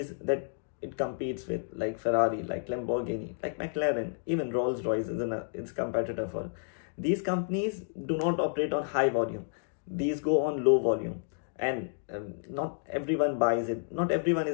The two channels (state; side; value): silent; right; digital silence